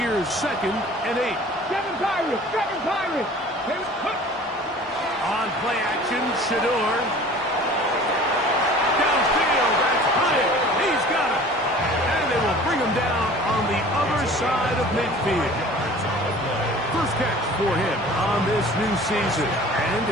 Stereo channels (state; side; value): normal; both; correlation 0.45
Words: 2nd and 8. Seven Pirates. Seven Pirates. On play action, Shador. Downfield, that's Hyatt. He's got it. And they will bring him down on the other side of midfield. First catch for him on this new season. And